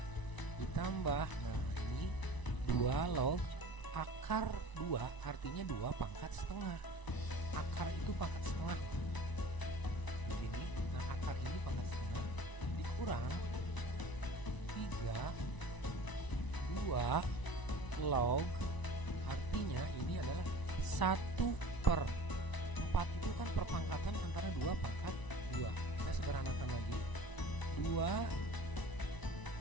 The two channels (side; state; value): right; late; 1.0 ms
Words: ditambah, nah ini 2 log akar 2, artinya 2 pangkat setengah. Akar itu pangkat setengah begini. Nah akar ini pangkat setengah dikurang 2 log, artinya ini adalah 1/4 itu kan perpangkatan antara 2 pangkat 2. Kita sederhanakan lagi. 2